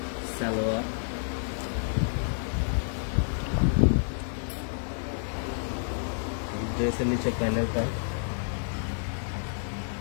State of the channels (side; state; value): right; silent; digital silence